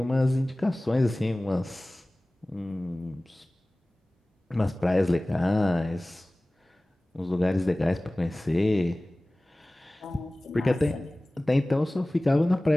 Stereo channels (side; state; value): both; normal; correlation 0.98